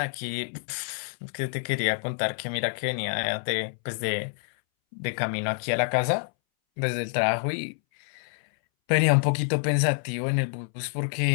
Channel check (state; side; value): silent; right; 60 dB below the other